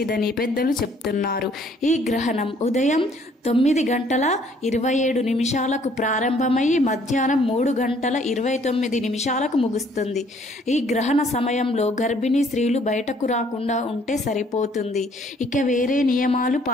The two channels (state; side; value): normal; both; correlation 0.61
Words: పెద్దలు చెప్తున్నారు. ఈ గ్రహణం ఉదయం 9:27 ప్రారంభమై మధ్యాహ్నం 3:29 ముగుస్తుంది. ఈ గ్రహణ సమయంలో గర్భిణీ స్త్రీలు బయటకు రాకుండా ఉంటే సరిపోతుంది. ఇక వేరే నియమాలు